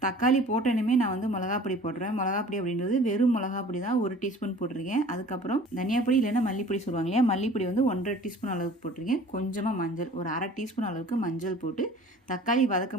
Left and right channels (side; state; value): both; normal; correlation 0.46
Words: தக்காளி போட்டேனுமே நான் வந்து மிளகாப்பொடி போட்டுருவேன். மிளகாப்பொடி அப்படின்றது வெறும் மிளகாப்பொடி தான் 1 டீஸ்பூன் போட்டிருக்கேன். அதுக்கப்புறம் தனியாப்பொடி இல்லைன்னா மல்லிப்பொடி சொல்லுவாங்க இல்லையா, மல்லிப்பொடி வந்து 1.5 டீஸ்பூன் அளவுக்கு போட்டிருக்கேன். கொஞ்சமாக மஞ்சள், ஒரு 1/2 டீஸ்பூன் அளவுக்கு மஞ்சள் போட்டு தக்காளி